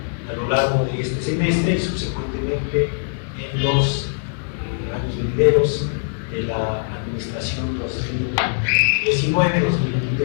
a lo largo de este semestre y subsecuentemente en los años venideros de la administración 2019-2023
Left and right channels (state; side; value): silent; right; digital silence